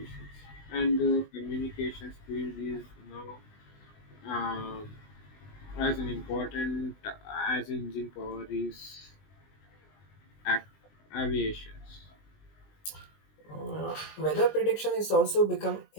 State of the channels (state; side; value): late; right; 20 ms